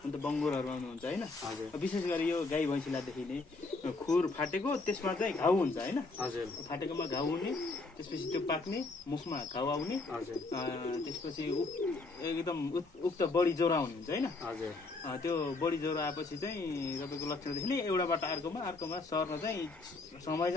अन्त बङ्गुरहरू आउनुहुन्छ होइन। विशेष गरी यो गाई भैँसीलाई देखिने खुर फाटेको, त्यसमा चाहिँ घाउ हुन्छ होइन। हजुर फाटेकोमा घाउ हुने, त्यसपछि त्यो पाक्ने, मुखमा घाउ आउने, हजुर त्यसपछि एकदम उक्त बढी ज्वरो आउने हुन्छ होइन। हजुर त्यो बढी ज्वरो आएपछि चाहिँ तपाईँको लक्षण देखिने एउटाबाट अर्कोमा सर्न चाहिँ समय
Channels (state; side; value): quieter; right; 3.5 dB